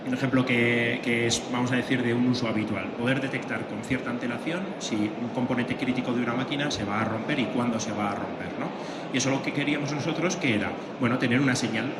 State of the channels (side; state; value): both; identical; correlation 1.00